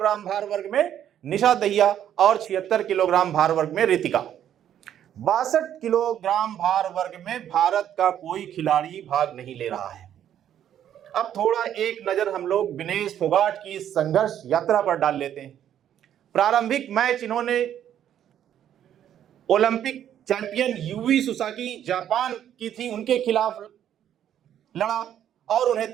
भार वर्ग में निशा दहिया और 76 किलोग्राम भार वर्ग में रितिका। 62 किलोग्राम भार वर्ग में भारत का कोई खिलाड़ी भाग नहीं ले रहा है। अब थोड़ा एक नजर हम लोग विनेश फोगाट की संघर्ष यात्रा पर डाल लेते हैं। प्रारंभिक मैच इन्होंने Olympic champion UV Susaki Japan की थी, उनके खिलाफ लड़ा और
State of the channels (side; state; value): left; quieter; 10.3 dB